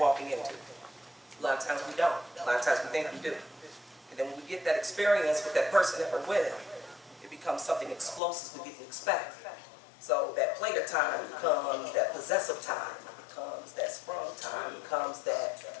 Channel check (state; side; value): drops out; right; at 8.2 s